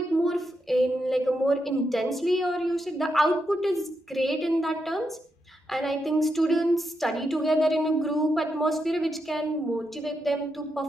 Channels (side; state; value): both; normal; correlation 0.83